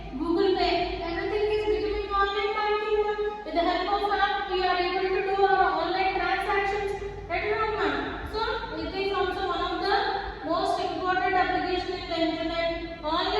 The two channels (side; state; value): both; identical; correlation 1.00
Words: Google pay, everything is becoming online banking. With the help of app we are able to do our online transactions at home. So it is also one of the most important application in the internet.